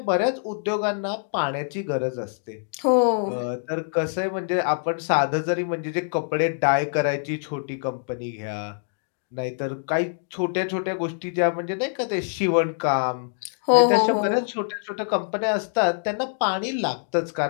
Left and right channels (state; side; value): silent; right; digital silence